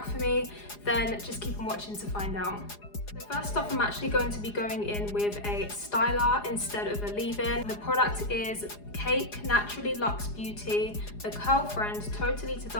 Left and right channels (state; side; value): late; right; 4.9 ms